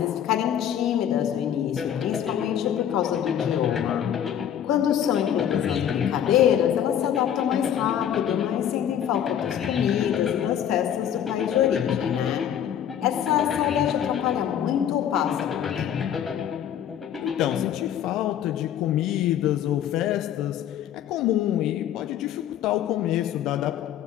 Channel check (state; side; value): quieter; right; 9.8 dB